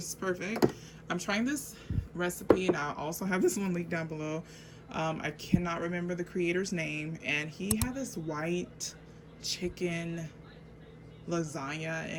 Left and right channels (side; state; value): both; identical; correlation 1.00